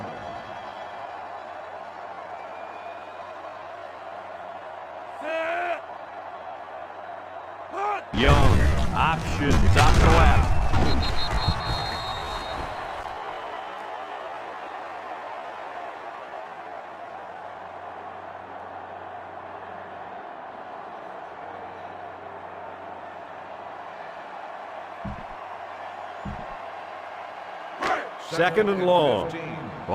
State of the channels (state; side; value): identical; both; correlation 1.00